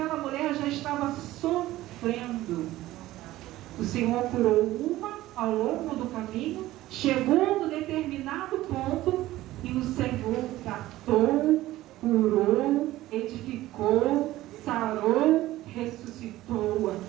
mulher já estava sofrendo. O Senhor curou uma ao longo do caminho, chegou no determinado ponto e o Senhor tratou, curou, edificou, sarou, ressuscitou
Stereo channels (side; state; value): left; quieter; 16.0 dB